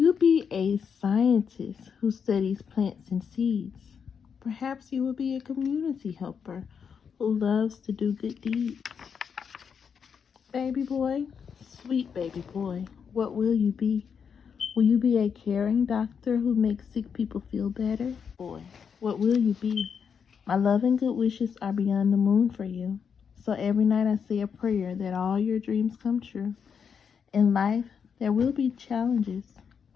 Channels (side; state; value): right; quieter; 6.8 dB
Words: be a scientist who studies plants and seeds? Perhaps you will be a community helper who loves to do good deeds. Baby boy, sweet baby boy, what will you be? Will you be a caring doctor who makes sick people feel better? Boy, what will you be? My love and good wishes are beyond the moon for you. So every night I say a prayer that all your dreams come true. In life, there will be challenges,